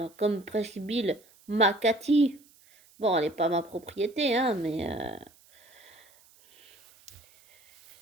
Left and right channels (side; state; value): right; noise; hiss, 28 dB below the sound